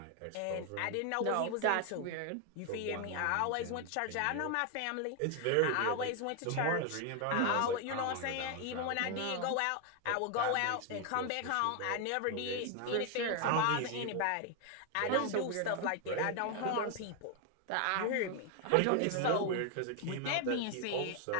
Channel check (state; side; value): different; both; correlation 0.01